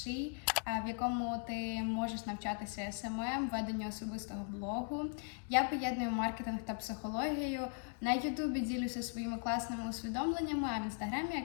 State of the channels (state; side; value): quieter; right; 38.4 dB